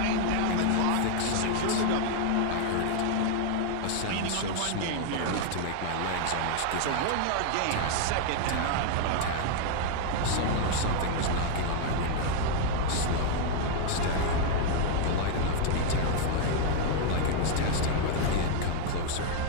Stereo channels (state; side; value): different; both; correlation 0.00